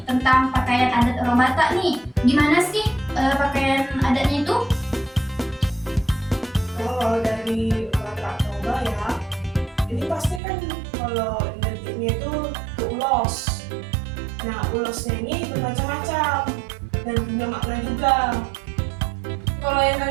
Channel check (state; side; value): drops out; left; at 10.4 s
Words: tentang pakaian adat orang Batak nih. Gimana sih pakaian adatnya itu? Kalau dari Batak Toba ya, ini pasti kan kalau identiknya itu ke ulos. Nah, ulosnya ini bermacam-macam dan punya makna juga. Kalau yang